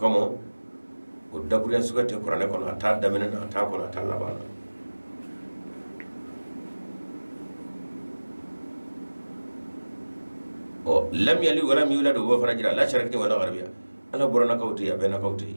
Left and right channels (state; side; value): inverted; both; correlation -1.00